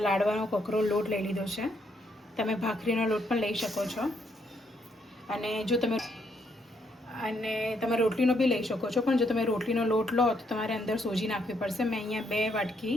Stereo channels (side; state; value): both; normal; correlation 0.74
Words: લાડવાનો કકરો લોટ લઈ લીધો છે. તમે ભાખરીનો લોટ પણ લઈ શકો છો, અને જો તમે રોટલીનો બી લઈ શકો છો, પણ જો તમે રોટલીનો લોટ લો તો તમારે અંદર સોજી નાખવી પડશે. મેં અહીંયા 2 વાટકી